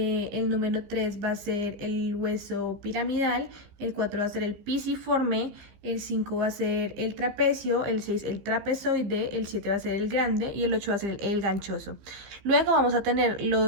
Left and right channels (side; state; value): left; late; 15 ms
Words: número 3 va a ser el hueso piramidal, el 4 va a ser el pisiforme, el 5 va a ser el trapecio, el 6 el trapezoide, el 7 va a ser el grande y el 8 va a ser el ganchoso. Luego vamos a tener